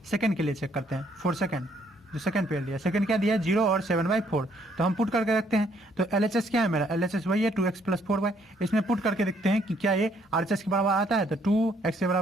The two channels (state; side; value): normal; both; correlation 0.67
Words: सेकंड के लिए चेक करते हैं, फॉर सेकंड, जो सेकंड पेयर दिया, सेकंड क्या दिया 0 और 7/4, तो हम पुट करके रखते हैं। तो LHS क्या है मेरा, LHS वही है 2x प्लस 4y, इसमें पुट करके देखते हैं कि क्या ये RHS के बराबर आता है। तो 2x के